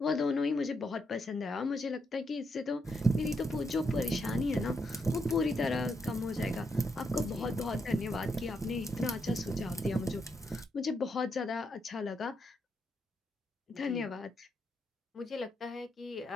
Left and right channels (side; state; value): both; normal; correlation 0.80